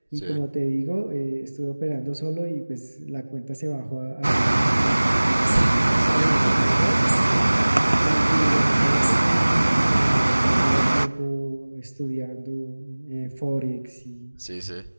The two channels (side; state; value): both; inverted; correlation -1.00